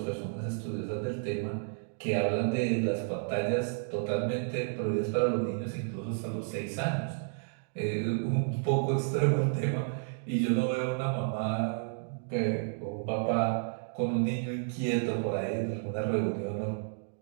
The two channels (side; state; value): left; silent; digital silence